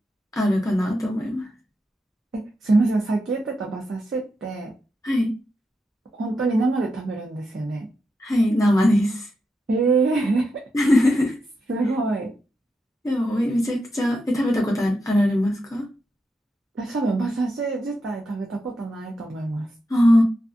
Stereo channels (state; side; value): normal; both; correlation 0.86